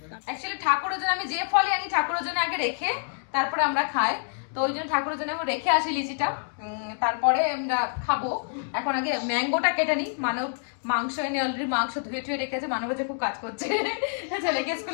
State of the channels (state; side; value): silent; right; digital silence